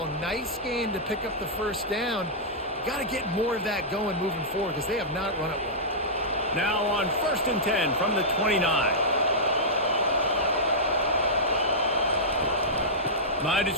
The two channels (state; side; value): normal; both; correlation -0.13